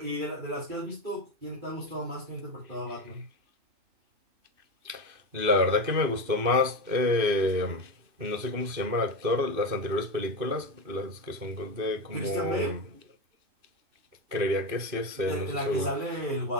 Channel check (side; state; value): left; late; 2.6 ms